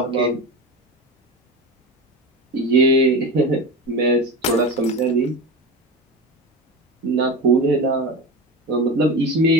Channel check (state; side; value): normal; both; correlation 0.24